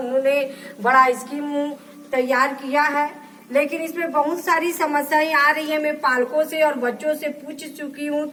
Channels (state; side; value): identical; both; correlation 1.00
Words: बड़ा स्कीम तैयार किया है। लेकिन इसमें बहुत सारी समस्याएं आ रही है। मैं पालकों से और बच्चों से पूछ चुकी हूँ,